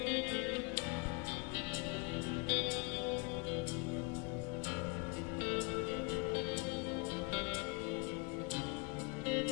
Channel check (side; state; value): right; quieter; 32.6 dB